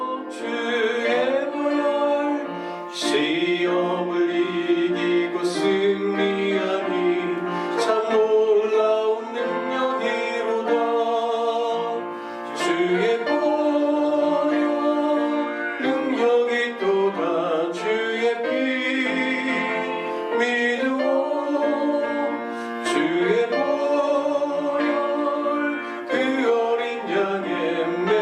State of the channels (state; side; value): identical; both; correlation 1.00